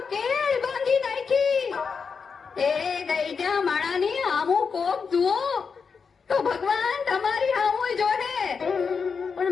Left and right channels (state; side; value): quieter; right; 5.6 dB